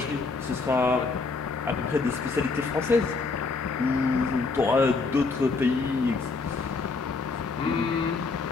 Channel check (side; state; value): right; quieter; 4.2 dB